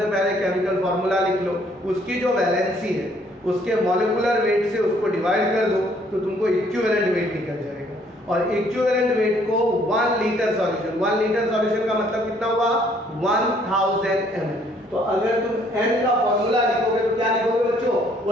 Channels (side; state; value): both; normal; correlation 0.63